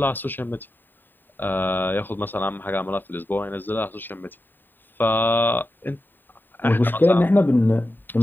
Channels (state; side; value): late; right; 0.092 ms